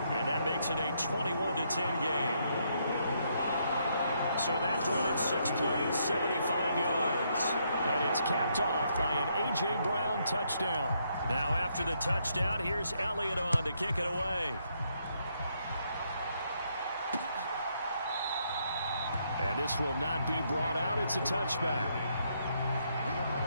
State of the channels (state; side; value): inverted; both; correlation -0.74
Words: that makes it a 21-10 game. So that drives 6 plays, 75 yards. And it's capped off by an A.J. Brown touchdown. Now after the touchdown, here's Elliott on to kick it away. And this will not be brought out. It's a touchback.